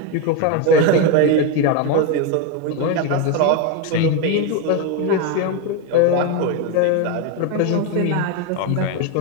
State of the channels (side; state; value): both; different; correlation 0.03